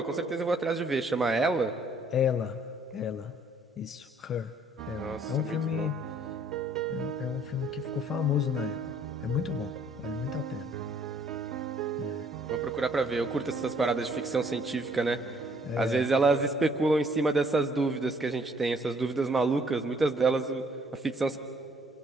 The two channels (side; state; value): both; normal; correlation 0.62